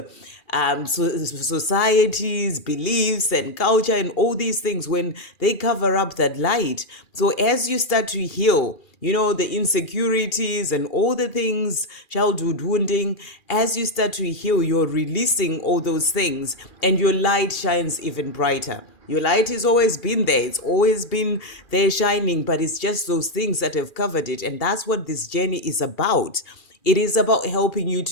societies, beliefs, and culture, and all these things, when they cover up that light. So as you start to heal, the insecurities and all the things, childhood wounding, as you start to heal, you're releasing all those things and your light shines even brighter. Your light has always been there. It's always been there shining, but it's just those things that have covered it. And that's what this journey is about. It is about helping you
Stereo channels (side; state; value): right; late; 2.4 ms